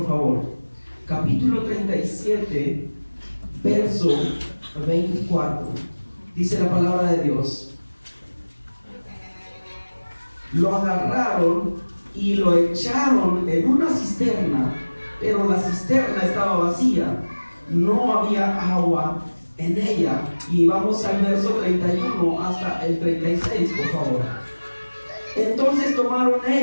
favor, capítulo 37, verso 24, dice la palabra de Dios: lo agarraron y lo echaron en una cisterna, pero la cisterna estaba vacía, no había agua en ella. Y vamos al verso 31 hasta el 36, por favor. Entonces tomaron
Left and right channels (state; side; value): inverted; both; correlation -1.00